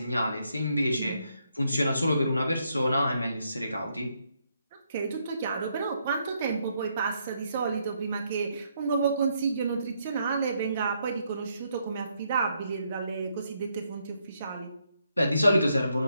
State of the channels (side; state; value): both; inverted; correlation -0.76